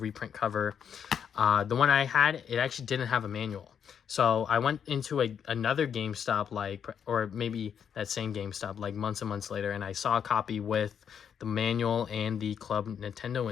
cover. The one I had, it actually didn't have a manual. So I went into another GameStop, like, or maybe that same GameStop, like months and months later, and I saw a copy with the manual and the Club Nintendo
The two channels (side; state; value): right; quieter; 7.9 dB